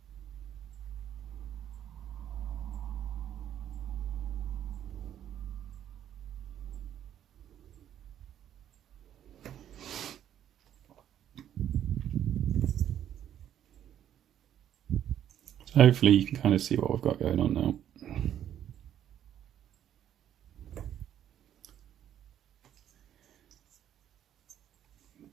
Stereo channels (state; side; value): quieter; left; 10.5 dB